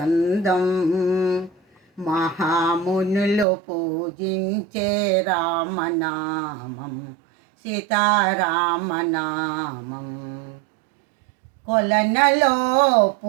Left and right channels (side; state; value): left; drops out; at 3.5 s